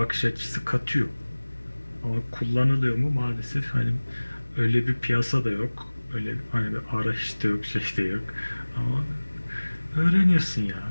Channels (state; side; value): inverted; both; correlation -1.00